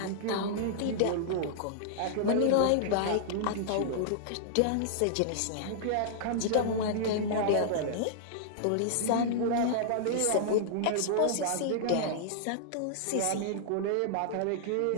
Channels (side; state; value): both; different; correlation -0.02